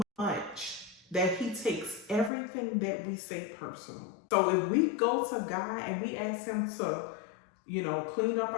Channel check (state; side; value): drops out; right; at 2.3 s